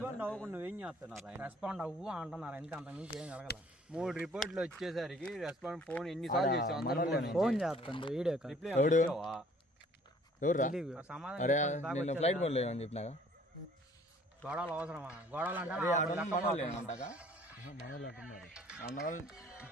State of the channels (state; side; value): normal; both; correlation 0.56